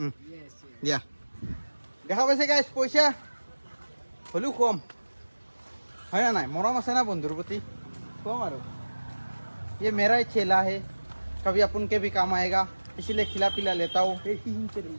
ইয়েস দিয়া দেখা পাইছে গাইছ, পইচা হ'লেও কম হয় না নাই? মৰম আছে না বন্ধুৰ প্ৰতি, কম আৰু। ये मेरा ही चेला है, कभी अपन के भी काम आएगा, इसलिए खिला पिला लेता हूँ।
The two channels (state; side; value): inverted; both; correlation -1.00